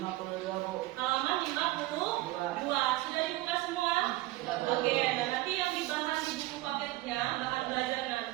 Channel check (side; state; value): left; quieter; 17.9 dB